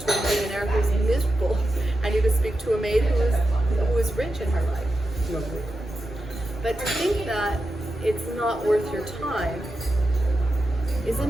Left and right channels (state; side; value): normal; both; correlation 0.89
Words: a millionaire who's miserable, and you could speak to a maid who is rich in her life. But to think that it's not worth your time is a